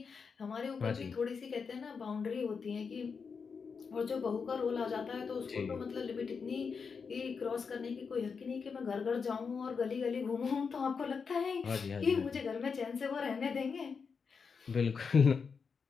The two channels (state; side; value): quieter; right; 5.6 dB